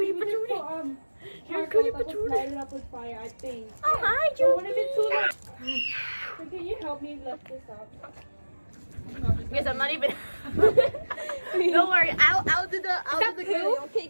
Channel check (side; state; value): both; inverted; correlation -1.00